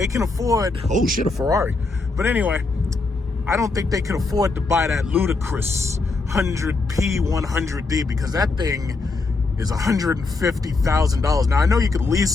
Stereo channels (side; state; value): right; quieter; 3.7 dB